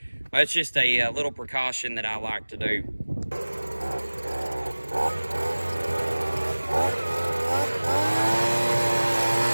that's just a little precaution that I like to do.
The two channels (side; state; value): both; inverted; correlation -1.00